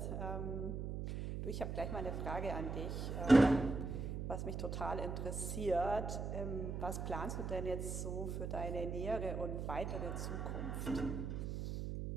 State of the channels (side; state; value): right; noise; hum, 3 dB below the sound